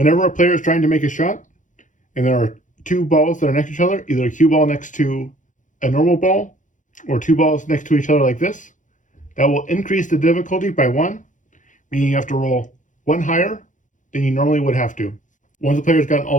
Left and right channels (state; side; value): late; right; 0.37 ms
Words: a player is trying to make a shot, and there are 2 balls that are next to each other, either a cue ball next to a normal ball, or 2 balls next to each other like this, that will increase the difficulty by 1, meaning you have to roll 1 higher than you normally would have to. Once the player's gotten all